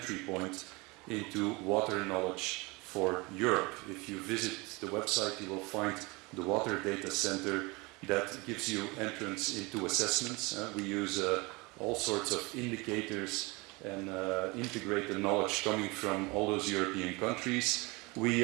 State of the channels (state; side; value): quieter; left; 25.6 dB